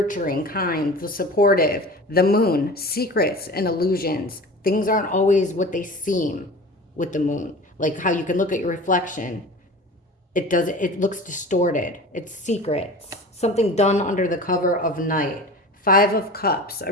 kind, the supportive. The moon. Secrets and illusions. Things aren't always what they seem with the moon. Like how you can look at your reflection. It looks distorted. It's secrets. Something done under the cover of night. Five of Cups.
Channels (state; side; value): normal; both; correlation 0.37